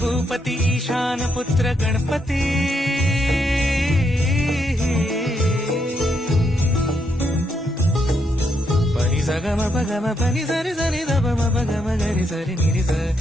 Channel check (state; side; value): normal; both; correlation 0.78